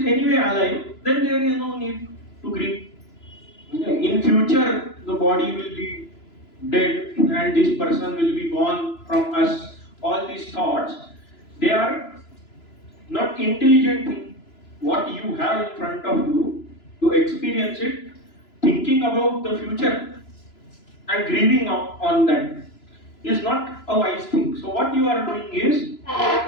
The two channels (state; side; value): late; right; 3.0 ms